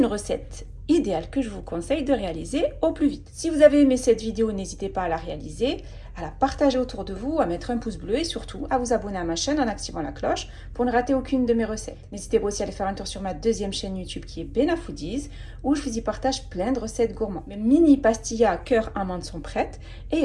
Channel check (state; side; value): identical; both; correlation 1.00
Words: recette idéale que je vous conseille de réaliser au plus vite. Si vous avez aimé cette vidéo, n'hésitez pas à la réaliser, à la partager autour de vous, à mettre un pouce bleu et surtout à vous abonner à ma chaîne en activant la cloche pour ne rater aucune de mes recettes. N'hésitez pas aussi à aller faire un tour sur ma deuxième chaîne YouTube qui est Bena Foodies où je vous y partage plein de recettes gourmandes. Mes mini pastillas cœur amande sont prêtes et il